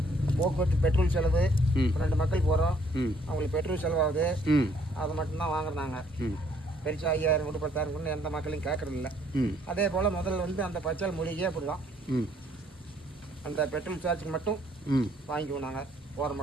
போக்குவரத்து பெட்ரோல் செலவு 2 மக்கள் போகிறோம் அவங்களுக்கு பெட்ரோல் செலவாகுது. அதை மட்டும்தான் வாங்குறாங்க. பெருசா 5000 கூட 10,000 கூட எந்த மக்களையும் கேட்கறதில்ல. அதே போல் முதல்ல வந்து அந்த பச்சை மூலிகையே அப்படிதான் அந்த பெட்ரோல் சார்ஜுக்கு மட்டும் வாங்கிக்குவோம். நாங்கள் போகிற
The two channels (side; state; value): both; normal; correlation 0.65